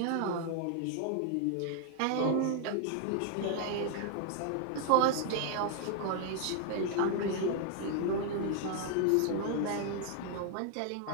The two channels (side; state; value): both; different; correlation 0.00